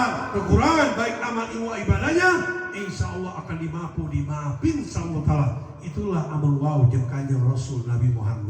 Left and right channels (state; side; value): identical; both; correlation 1.00